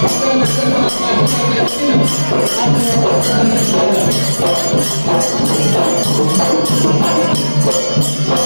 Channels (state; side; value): inverted; both; correlation -1.00